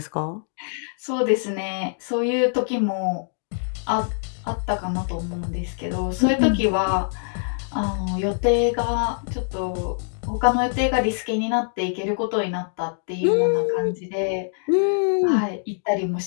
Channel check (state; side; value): silent; right; digital silence